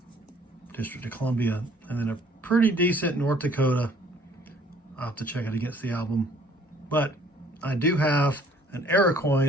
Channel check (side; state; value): both; normal; correlation 0.57